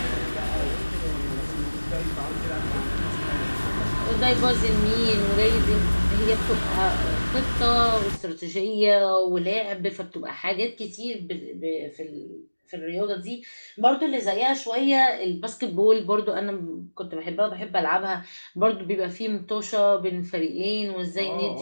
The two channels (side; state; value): both; inverted; correlation -1.00